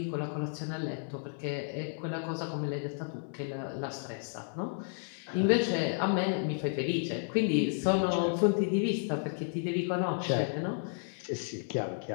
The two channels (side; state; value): right; silent; digital silence